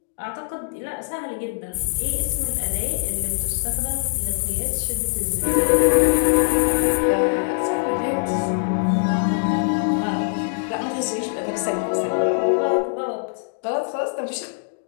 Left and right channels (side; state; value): right; silent; digital silence